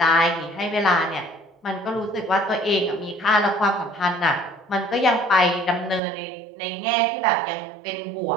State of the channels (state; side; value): drops out; left; at 6.0 s